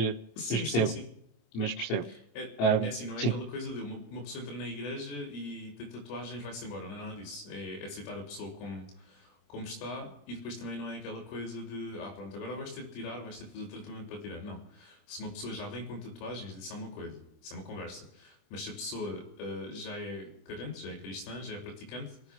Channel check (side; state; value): right; late; 26 ms